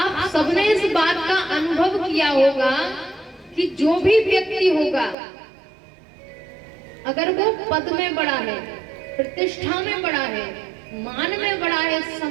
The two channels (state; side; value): drops out; left; at 5.2 s